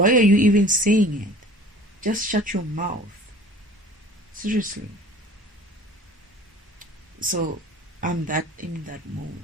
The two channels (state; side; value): normal; both; correlation 0.45